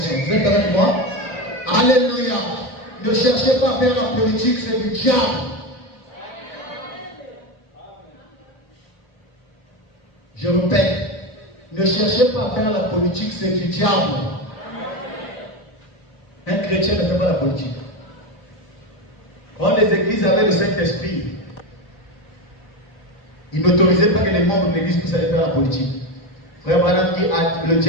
Vous êtes avec moi? Alléluia. Ne cherchez pas à faire la politique, c'est du diable. Je répète, ne cherchez pas à faire la politique, c'est du diable. Un chrétien ne fait pas la politique. Quand les églises avaient le Saint-Esprit, ils n'autorisaient pas que les membres de l'église puissent aller faire la politique. Frère Branham dit que le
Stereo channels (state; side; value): late; right; 4.6 ms